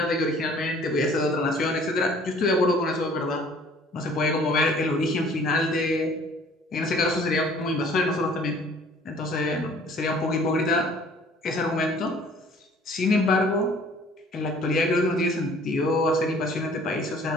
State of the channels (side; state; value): both; normal; correlation 0.53